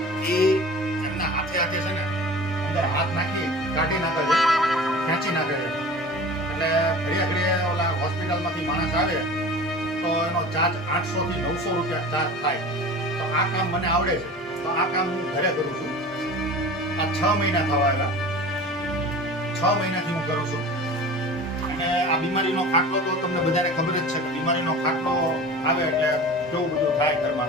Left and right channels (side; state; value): both; normal; correlation 0.38